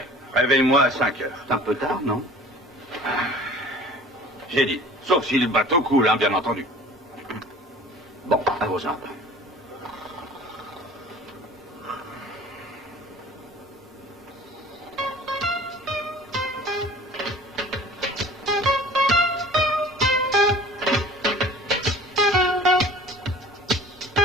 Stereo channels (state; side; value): normal; both; correlation 0.45